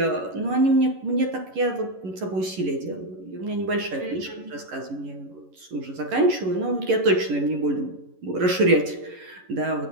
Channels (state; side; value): late; left; 11 ms